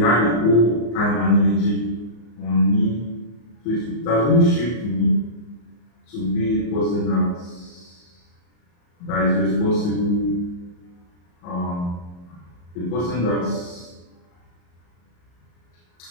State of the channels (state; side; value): late; right; 34 ms